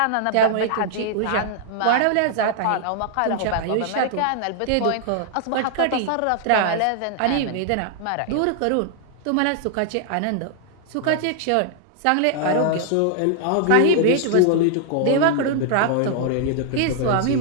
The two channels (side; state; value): both; different; correlation -0.01